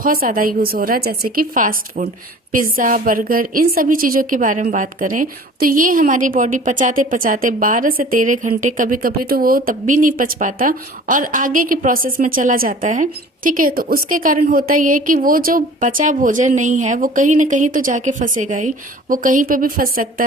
ज्यादा यूज हो रहा है, जैसे कि फास्ट फूड, पिज्जा, बर्गर, इन सभी चीजों के बारे में बात करें तो ये हमारी बॉडी पचाते पचाते 12 से 13 घंटे, कभी कभी तो वो तब भी नहीं पच पाता और आगे के प्रोसेस में चला जाता है। ठीक है, तो उसके कारण होता ये कि वो जो बचा भोजन नहीं है वो कहीं ना कहीं तो जाके फंसेगा ही। वो कहीं पे भी फंस सकता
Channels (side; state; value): both; normal; correlation 0.45